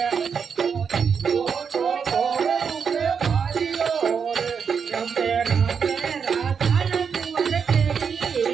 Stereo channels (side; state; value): left; quieter; 6.5 dB